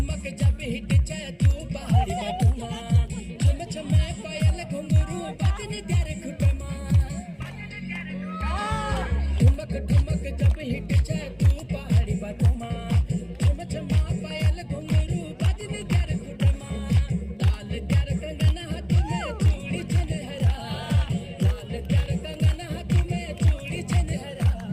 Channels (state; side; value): identical; both; correlation 1.00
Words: जब हिट जाए तू पहाड़ी बटुमा छम छम पायल घुंघरू बाजने तेरे खुटे ठुमक ठुमक जब हिट जाए तू पहाड़ी बटुमा छम छम पायल घुंघरू बाजने तेरे खुटे लाल तेरे कंगन हाथ में चूड़ी छनहरा लाल तेरे कंगन हाथ में चूड़ी छनहरा